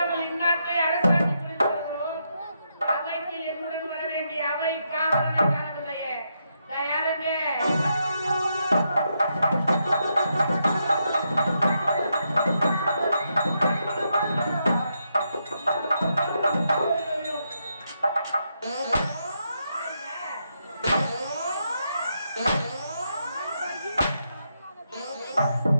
இந்நாட்டை அரசாட்சி புரிந்து வருகிறோம். அவைக்கு என்னுடன் வர வேண்டிய அவை காவலனை காணவில்லையே. யாருங்க?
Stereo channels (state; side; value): inverted; both; correlation -0.81